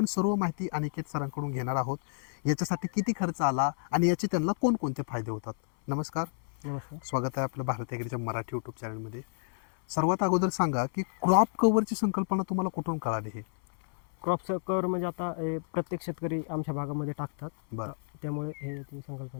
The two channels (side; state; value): right; silent; 58 dB below the other